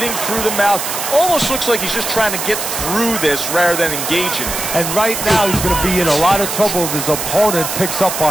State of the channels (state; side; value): noise; right; hiss, 4 dB below the sound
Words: through the mouth. Almost looks like he's just trying to get through this rather than engaging. And right now he's going to be in a lot of trouble if his opponent picks up